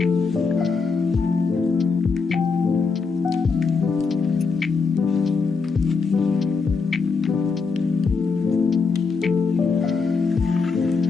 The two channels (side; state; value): right; quieter; 4.9 dB